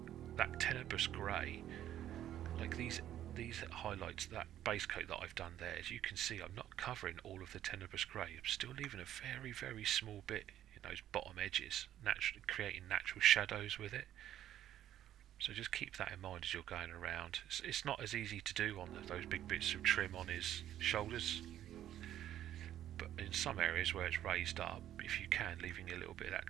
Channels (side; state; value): left; quieter; 11.8 dB